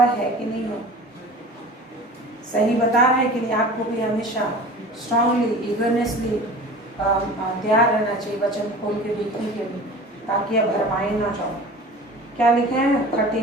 है कि नहीं हो, सही बता रहा है कि नहीं। आपको भी हमेशा स्ट्रांगली ईगरनेसली तैयार रहना चाहिए वचन खोल के देखने के लिए, ताकि आप भरमाए ना जाओ। क्या लिखा है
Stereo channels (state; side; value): normal; both; correlation 0.39